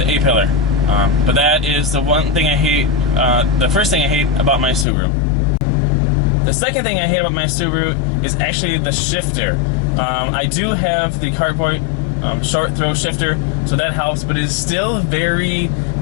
A-pillar. But that is the one thing I hate, the first thing I hate about my Subaru. The second thing I hate about my Subaru is actually the shifter. I do have the Cartboy short throw shifter, so that helps, but it is still very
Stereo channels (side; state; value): right; drops out; at 4.9 s